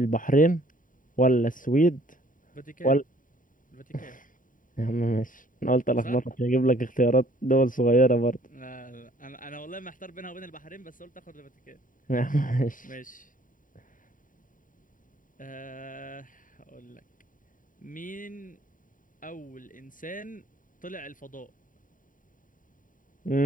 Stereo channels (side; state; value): right; late; 0.39 ms